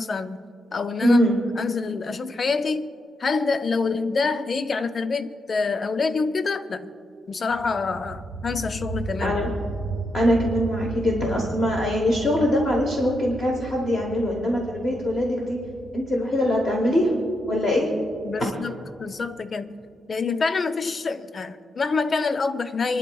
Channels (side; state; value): both; normal; correlation 0.82